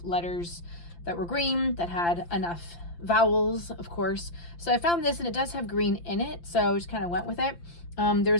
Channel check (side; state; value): right; late; 5.8 ms